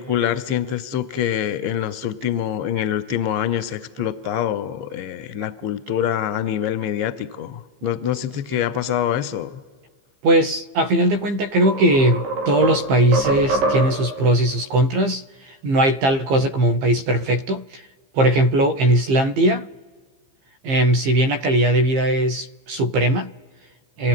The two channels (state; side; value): late; left; 15 ms